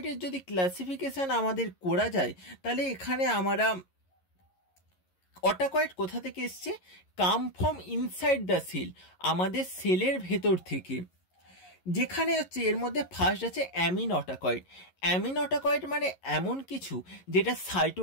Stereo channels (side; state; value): right; late; 11 ms